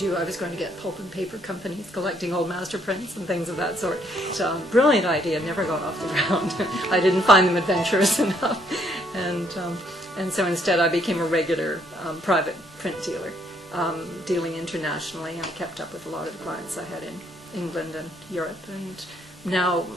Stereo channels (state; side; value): normal; both; correlation 0.69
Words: I was going to get pulp and paper companies collecting old master prints and things of that sort. So, brilliant idea, never got off the ground. I didn't find them adventurous enough. And so instead I became a regular private print dealer, dealing internationally. I kept up with a lot of the clients I had in England and Europe, and now